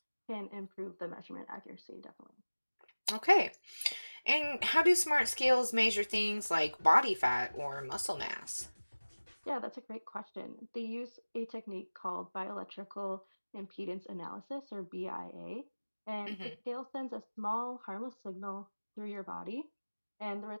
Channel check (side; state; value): both; inverted; correlation -1.00